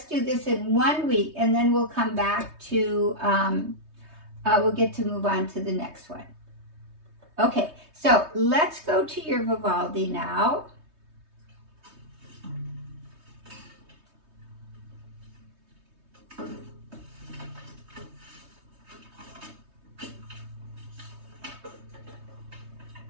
do this in 1 week, and then we'll come back to, we'll get to move on to the next one. Okay, so let's go to your Vivaldi now.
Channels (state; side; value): late; left; 3.2 ms